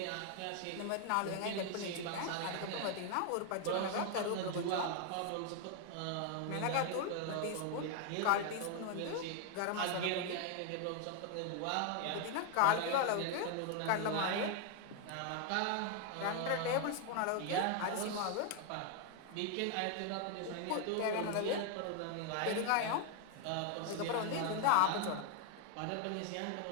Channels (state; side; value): different; both; correlation 0.01